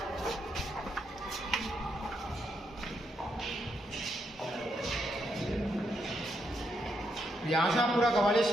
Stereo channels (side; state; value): both; normal; correlation 0.79